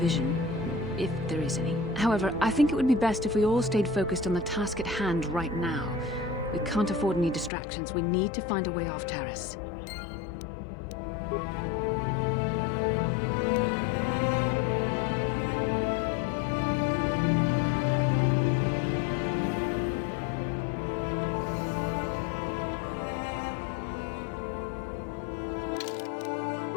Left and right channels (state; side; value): drops out; right; at 7.5 s